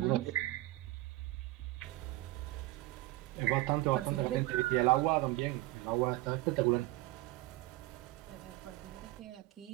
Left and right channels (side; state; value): left; quieter; 18.5 dB